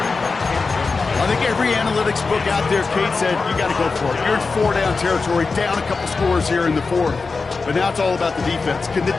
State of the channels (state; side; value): quieter; right; 4.3 dB